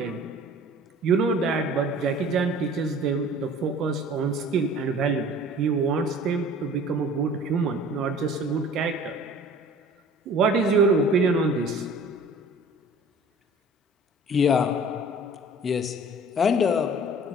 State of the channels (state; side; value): normal; both; correlation 0.47